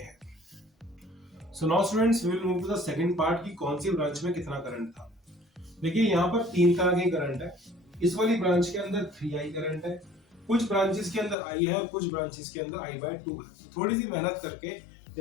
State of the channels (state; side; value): drops out; right; at 11.4 s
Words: So now students, we will move to the second part की कौन सी ब्रांच में कितना करंट था। देखिए, यहाँ पर 3 तरह के करंट है। इस वाली ब्रांच के अंदर 3i करंट है, कुछ ब्रांचेस के अंदर i है और कुछ ब्रांचेस के अंदर i बाय 2 है। थोड़ी सी मेहनत करके,